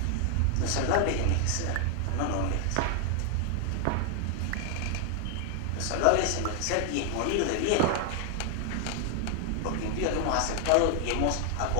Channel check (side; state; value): both; different; correlation 0.00